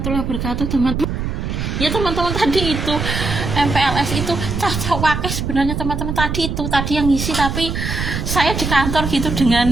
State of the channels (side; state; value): right; noise; rumble, 3 dB below the sound